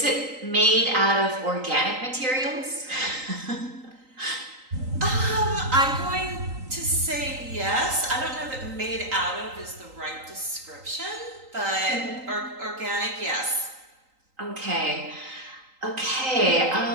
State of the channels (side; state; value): left; late; 3.9 ms